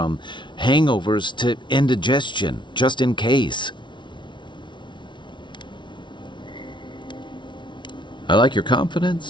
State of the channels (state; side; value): late; right; 0.23 ms